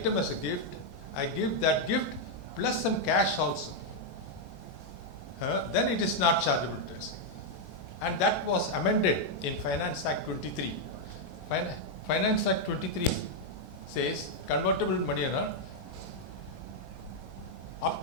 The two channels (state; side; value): normal; both; correlation -0.02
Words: as a gift, I give that gift plus some cash also, then it is not chargeable to tax. And that was amended in Finance Act 23. Finance Act 23 says convertible money, up